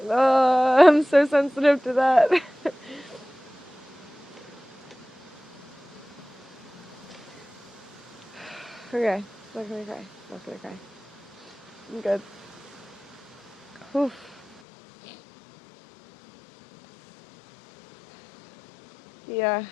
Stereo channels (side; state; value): right; drops out; at 14.6 s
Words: Oh, I'm so sensitive to that. Okay, not gonna cry. Not gonna cry. I'm good. Oof. Yeah,